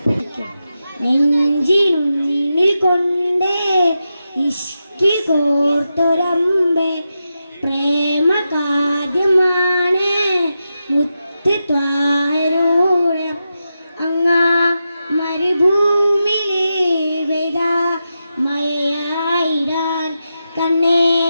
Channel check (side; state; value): both; inverted; correlation -0.89